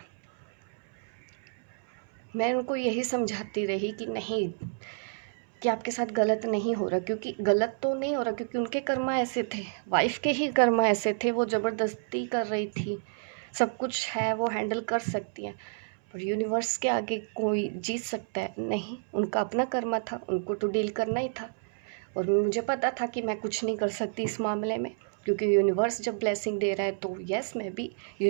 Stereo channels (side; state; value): left; silent; 58 dB below the other